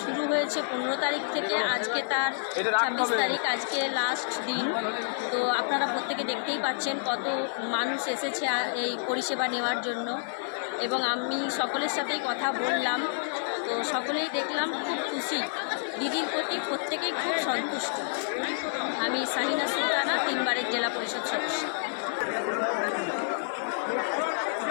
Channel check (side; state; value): right; silent; 59 dB below the other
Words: শুরু হয়েছে 15 তারিখ থেকে, আজকে তার 26 তারিখ, আজকে লাস্ট দিন। তো আপনারা প্রত্যেকে দেখতেই পাচ্ছেন কত মানুষ এসেছে এই পরিষেবা নেওয়ার জন্য, এবং আমি সকলের সাথেই কথা বললাম, তো সকলেই দেখলাম খুব খুশি, দিদির প্রতি প্রত্যেকেই খুব সন্তুষ্ট। আমি শাহিনা সুলতানা, 3 বারের জেলা পরিষদ সদস্য।